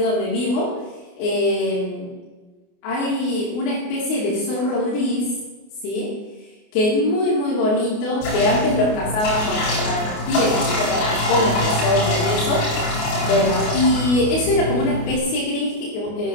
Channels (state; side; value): late; right; 28 ms